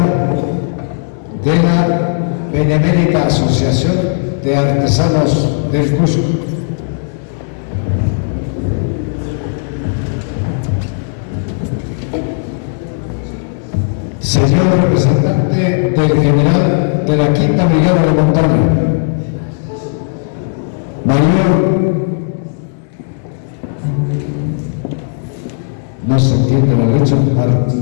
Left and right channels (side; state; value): right; silent; digital silence